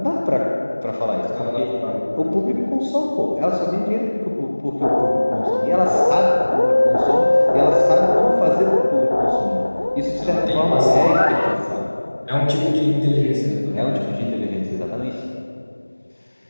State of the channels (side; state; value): both; inverted; correlation -1.00